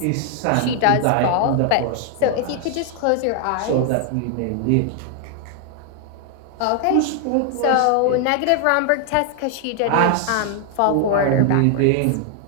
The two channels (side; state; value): both; different; correlation 0.00